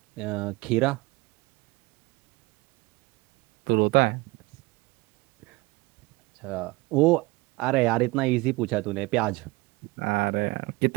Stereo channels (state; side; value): quieter; left; 22.8 dB